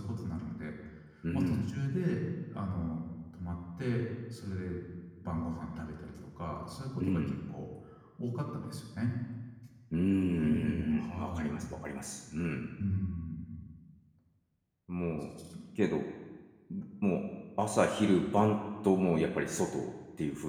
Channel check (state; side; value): identical; both; correlation 1.00